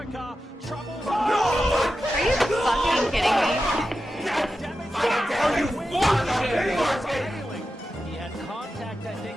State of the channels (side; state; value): both; normal; correlation 0.91